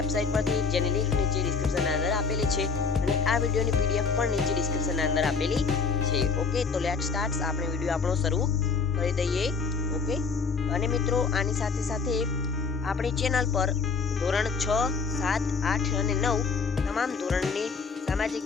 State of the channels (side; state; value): right; quieter; 5.1 dB